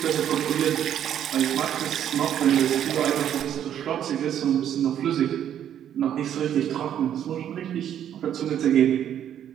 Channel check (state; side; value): quieter; left; 10.1 dB